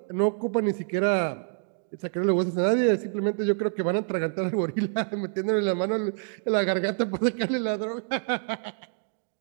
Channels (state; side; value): silent; left; digital silence